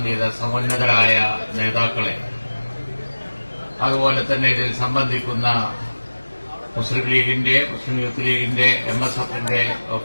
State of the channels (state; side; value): inverted; both; correlation -1.00